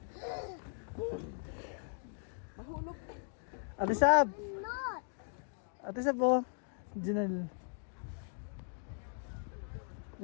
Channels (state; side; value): silent; right; 52 dB below the other